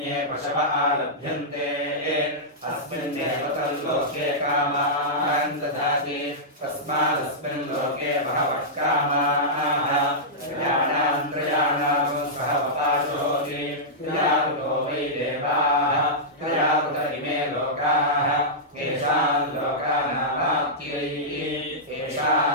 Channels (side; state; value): both; normal; correlation -0.12